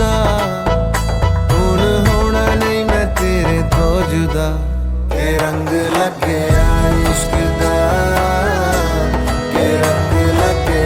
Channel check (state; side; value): identical; both; correlation 1.00